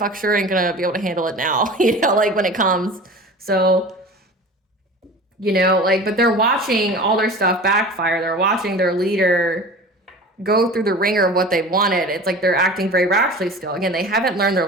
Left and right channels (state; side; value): normal; both; correlation 0.37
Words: sure ain't going to be able to handle it now, you know, like when it comes. So, you know, like, but they're watching all their stuff backfire. They're watching their leader go through the ringer of what they wanted. It's like they're acting very rashly still. Again, they haven't learned